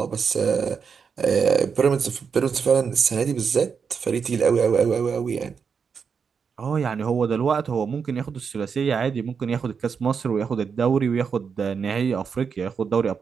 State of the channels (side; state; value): left; quieter; 6.1 dB